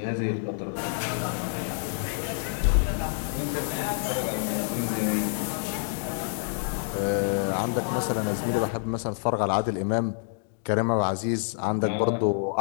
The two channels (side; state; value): right; silent; digital silence